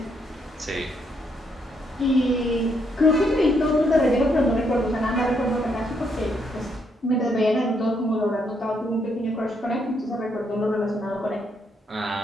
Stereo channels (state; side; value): normal; both; correlation 0.74